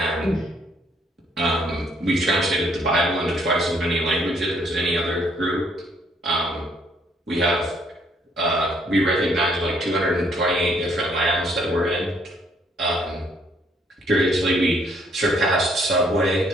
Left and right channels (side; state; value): both; normal; correlation 0.67